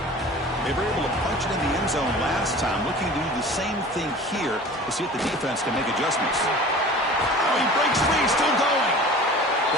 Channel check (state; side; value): normal; both; correlation 0.41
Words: They were able to punch it in the end zone last time, looking to do the same thing here to see if the defense can make adjustments. Oh, he breaks free, still going.